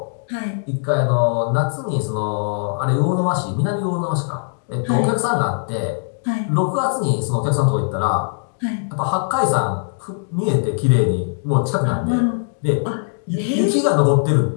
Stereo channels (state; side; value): silent; right; digital silence